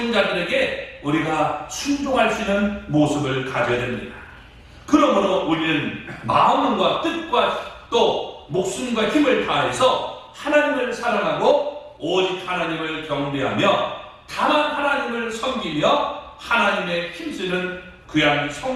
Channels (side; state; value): both; identical; correlation 1.00